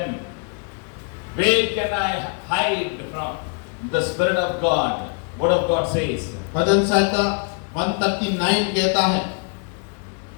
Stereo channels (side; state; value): right; quieter; 39.5 dB